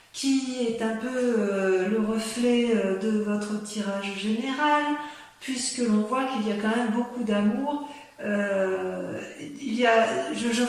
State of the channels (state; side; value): identical; both; correlation 1.00